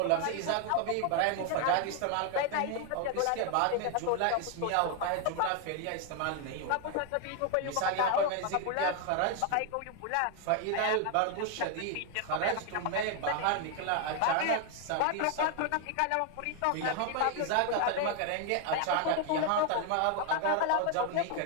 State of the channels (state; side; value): different; both; correlation 0.00